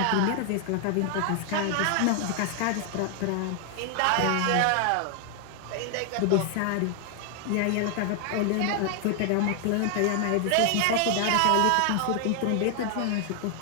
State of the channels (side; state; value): both; different; correlation 0.00